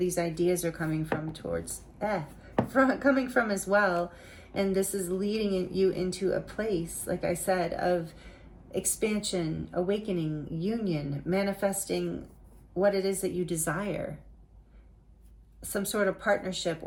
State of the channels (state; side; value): identical; both; correlation 1.00